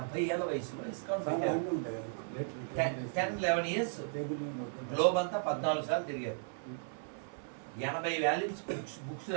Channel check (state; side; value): silent; left; 54 dB below the other